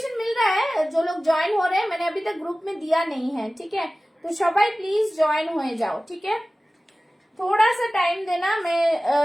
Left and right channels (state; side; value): normal; both; correlation 0.97